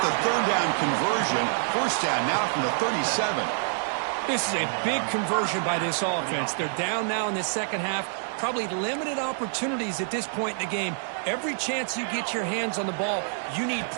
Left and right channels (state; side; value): silent; left; digital silence